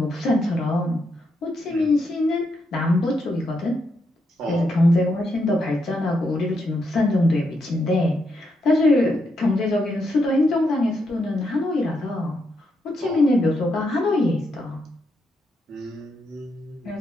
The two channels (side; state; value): both; normal; correlation 0.81